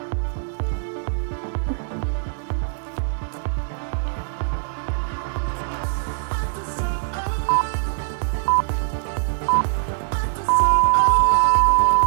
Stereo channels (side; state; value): left; silent; 61 dB below the other